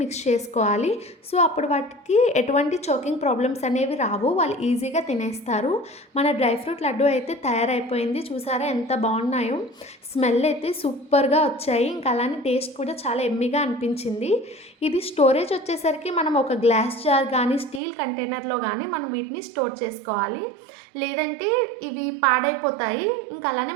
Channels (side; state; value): left; drops out; at 17.8 s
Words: మిక్స్ చేసుకోవాలి. సో, అప్పుడు వాటికి ఎటువంటి చోకింగ్ ప్రాబ్లమ్స్ అనేవి రావు. వాళ్ళు ఈజీగా తినేస్తారు. మన డ్రై ఫ్రూట్ లడ్డు అయితే తయారైపోయింది. చూసారా ఎంత బాగున్నాయో. స్మెల్ అయితే సూపర్‌గా వచ్చాయి. ఇంకా అలానే టేస్ట్ కూడా చాలా యమ్మీగా అనిపించింది. ఇది స్టోరేజ్ వచ్చేసరికి మనం ఒక గ్లాస్ జార్ కానీ స్టీల్ కంటైనర్లో కానీ మనం వీటిని స్టోర్ చేసుకోవాలి. లేదంటే ఇవి పాడైపోతాయి. ఇంకా అలానే